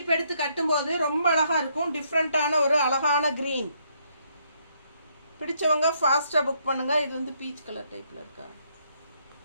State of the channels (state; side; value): inverted; both; correlation -0.72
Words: எடுத்து கட்டும்போது ரொம்ப அழகாக இருக்கும். டிஃப்ரெண்ட்டான ஒரு அழகான க்ரீன். பிடிச்சவங்க ஃபாஸ்ட்டாக புக் பண்ணுங்கள். இது வந்து பீச் கலர் டைப்பில் இருக்கா?